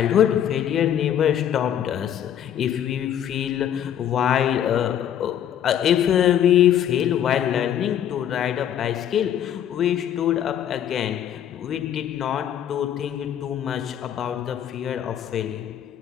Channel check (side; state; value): right; quieter; 10.0 dB